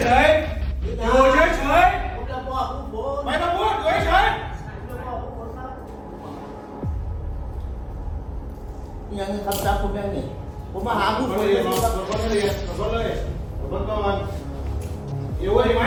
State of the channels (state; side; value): identical; both; correlation 1.00